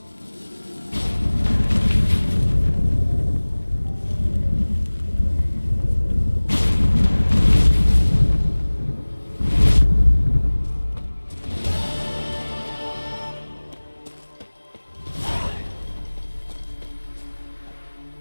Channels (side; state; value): both; inverted; correlation -1.00